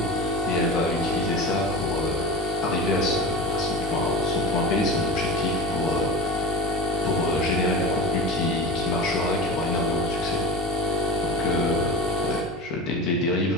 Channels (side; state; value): both; normal; correlation 0.30